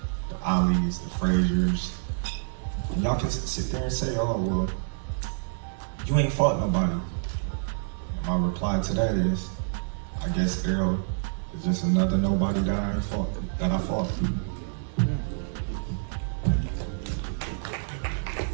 the Alis, the Fraziers. And y'all can sit there and say, oh, well, you ain't fought nobody. And my reply to that is, I guess Errol is just another nobody that I fought.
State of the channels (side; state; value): left; silent; digital silence